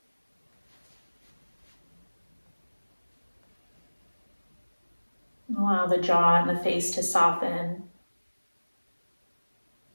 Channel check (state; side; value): inverted; both; correlation -1.00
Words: Allow the jaw and the face to soften.